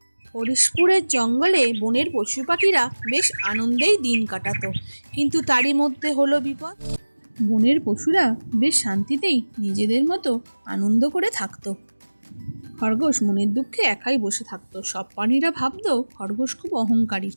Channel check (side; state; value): both; inverted; correlation -1.00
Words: হরিশপুরের জঙ্গলে বনের পশু পাখিরা বেশ আনন্দেই দিন কাটাতো, কিন্তু তারই মধ্যে হলো বিপদ। বনের পশুরা বেশ শান্তিতেই নিজেদের মতো আনন্দ করে থাকতো। খরগোশ মনের দুঃখে একাই বসে থাকতো। সব প্রাণীরা ভাবতো খরগোশ খুব অহংকারী,